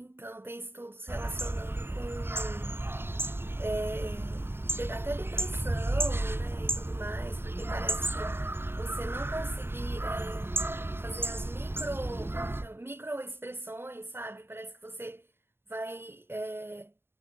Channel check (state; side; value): late; left; 0.11 ms